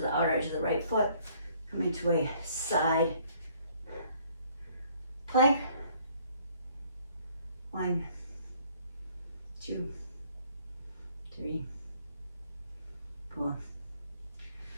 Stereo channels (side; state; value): both; inverted; correlation -0.61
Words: the outer edge of the right foot. Come into a side plank. 1, 2, 3, 4.